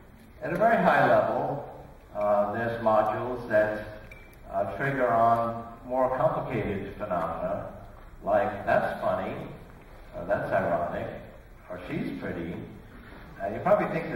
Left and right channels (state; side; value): identical; both; correlation 1.00